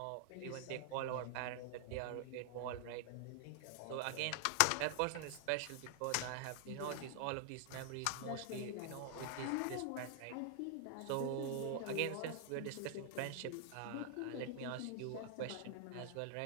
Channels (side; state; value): both; different; correlation 0.00